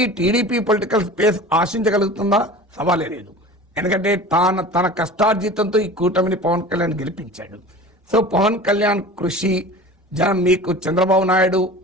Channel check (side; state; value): both; normal; correlation 0.38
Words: టీడీపీ పొలిటికల్ స్పేస్ ఆశించగలుగుతుందా? సవాలే లేదు. ఎందుకంటే తన కష్టార్జితంతో ఈ కూటమిని పవన్ కళ్యాణ్ గెలిపించాడు. సో పవన్ కళ్యాణ్ కృషి, మీకు చంద్రబాబు నాయుడు